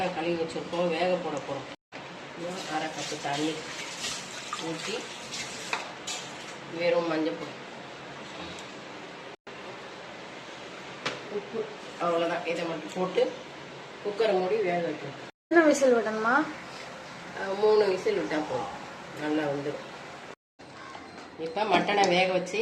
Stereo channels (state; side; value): identical; both; correlation 1.00